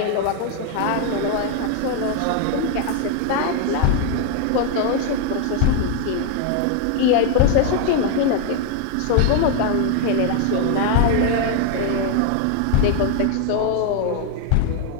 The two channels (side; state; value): both; different; correlation 0.00